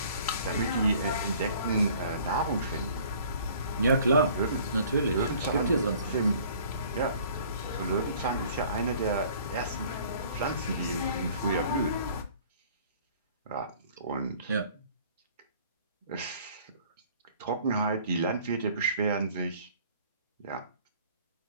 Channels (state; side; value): inverted; both; correlation -0.53